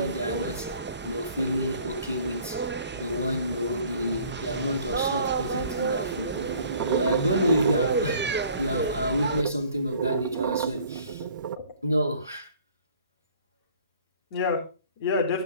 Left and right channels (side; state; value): both; inverted; correlation -0.53